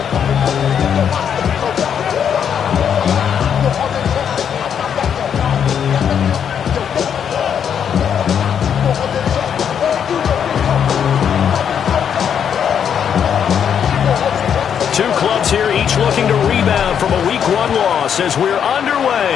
Two clubs here, each looking to rebound from a Week 1 loss as we're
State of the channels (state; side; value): quieter; right; 8.1 dB